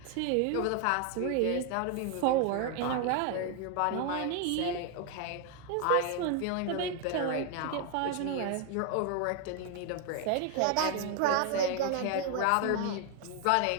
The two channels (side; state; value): both; different; correlation 0.01